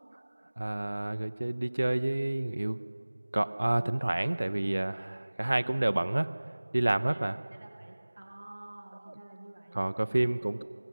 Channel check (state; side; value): inverted; both; correlation -1.00